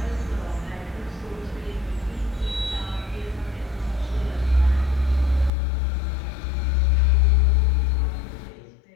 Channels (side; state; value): right; drops out; at 5.5 s